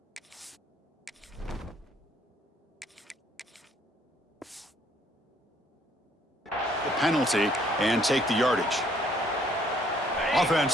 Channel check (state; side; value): normal; both; correlation 0.64